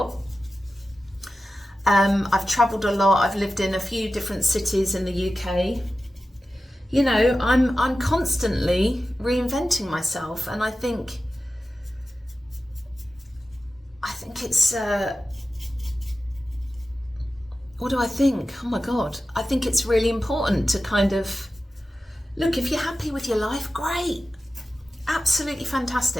I've travelled a lot. I've lived in a few different cities in the UK. I'm constantly reinventing myself, and I think it's what do I think? Oh my God, I think it's really important to kind of look, if you're happy with your life, great, absolutely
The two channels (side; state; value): both; normal; correlation 0.94